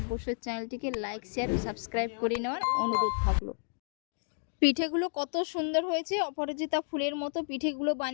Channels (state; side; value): silent; right; digital silence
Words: চ্যানেলটিকে লাইক, শেয়ার ও সাবস্ক্রাইব করে নেওয়ার অনুরোধ থাকলো। পিঠেগুলো কত সুন্দর হয়েছে, অপরাজিতা ফুলের মতো পিঠেগুলো